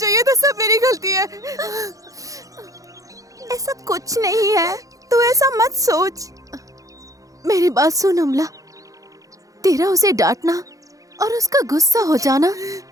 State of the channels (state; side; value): late; left; 0.17 ms